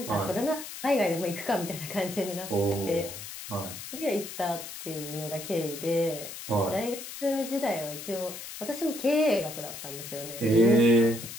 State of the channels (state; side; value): noise; left; hiss, 10 dB below the sound